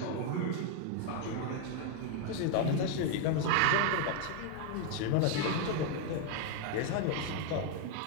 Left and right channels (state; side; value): different; both; correlation 0.00